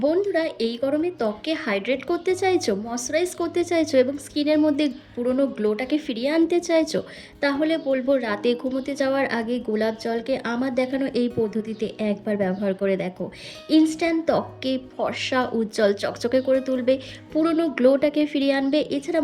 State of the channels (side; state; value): both; identical; correlation 1.00